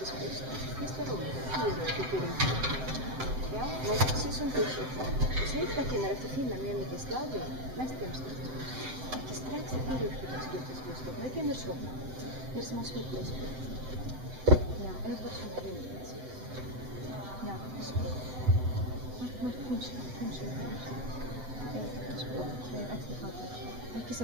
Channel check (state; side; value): late; left; 7.8 ms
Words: schysst. Visst var roligt? 4 på Turinki. Ja, men precis som du sa. Och så yhtäkkiä ne lähti finna mielenkiintoista stadion. Näistä jämskistä. Ja strax i Piruskytäskytäskystä. Men jag känner så. Det är som en svittläsby. Ja, en person är väldigt. Ja, det är så. Men kanske. Ekki